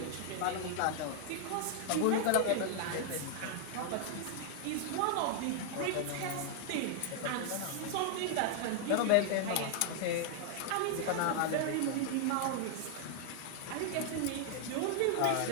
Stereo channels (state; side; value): different; both; correlation 0.00